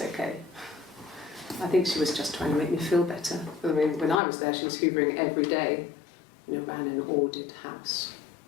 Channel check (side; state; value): right; drops out; at 4.2 s